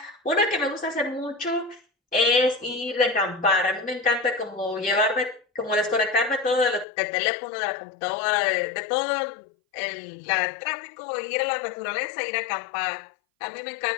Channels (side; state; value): right; drops out; at 6.9 s